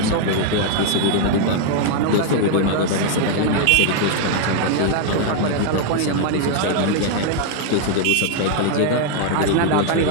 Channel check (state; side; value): different; both; correlation 0.00